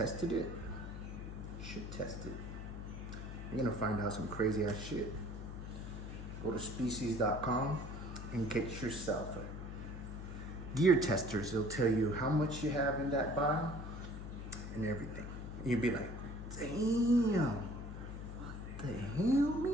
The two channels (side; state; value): left; noise; hum, 8 dB below the sound